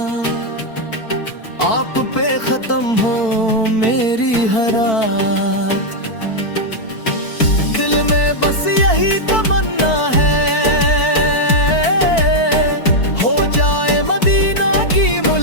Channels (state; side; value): late; right; 4.5 ms